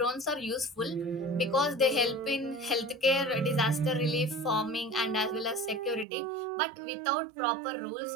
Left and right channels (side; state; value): left; drops out; at 6.1 s